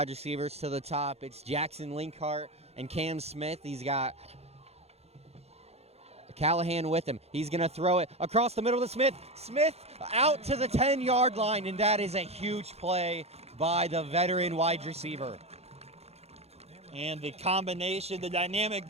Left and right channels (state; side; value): late; left; 0.30 ms